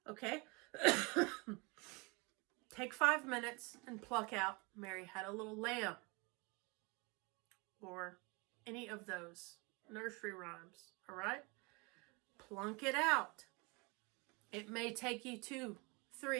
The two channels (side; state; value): left; quieter; 28.4 dB